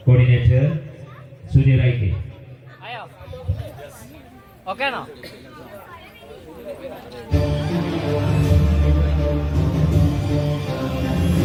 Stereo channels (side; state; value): both; identical; correlation 1.00